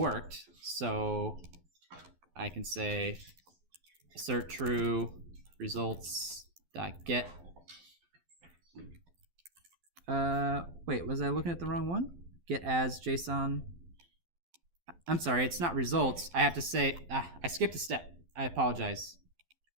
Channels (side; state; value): left; late; 12 ms